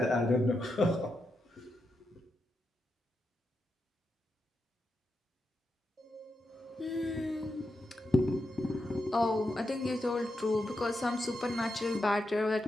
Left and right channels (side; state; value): both; normal; correlation 0.86